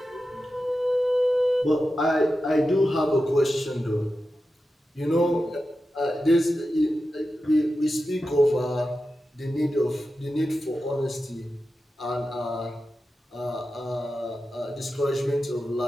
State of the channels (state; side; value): normal; both; correlation 0.92